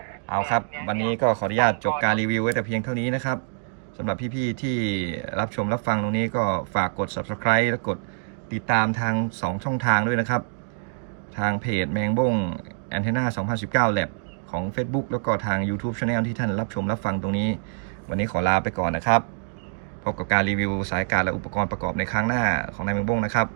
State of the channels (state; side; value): silent; left; digital silence